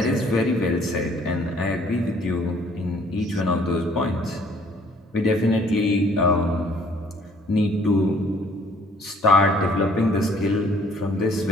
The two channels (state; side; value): normal; both; correlation 0.59